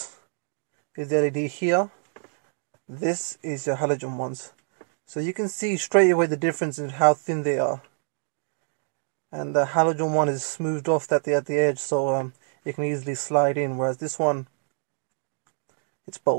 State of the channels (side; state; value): left; silent; 59 dB below the other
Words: is the LED here. This is your halogen ones. So you can see straight away the difference in how thin they are. And the halogen one is smoothed off at the edge, so it can easily slide in, whereas this one, it's